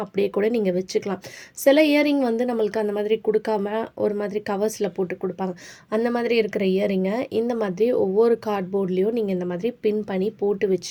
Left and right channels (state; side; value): identical; both; correlation 1.00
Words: அப்படியே கூட நீங்கள் வச்சுக்கலாம். சில இயரிங் நம்மளுக்கு அந்த மாதிரி கொடுக்காம ஒரு மாதிரி கவர்ஸில் போட்டு கொடுப்பாங்க. அந்த மாதிரி இருக்கிற இயரிங்கை இந்த மாதிரி ஒவ்வொரு கார்ட்போர்ட்லேயும் நீங்கள் இந்த மாதிரி பின் பண்ணி போட்டு